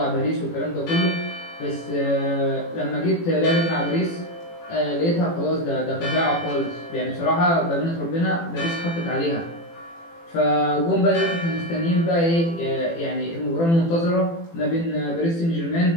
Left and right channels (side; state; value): right; late; 18 ms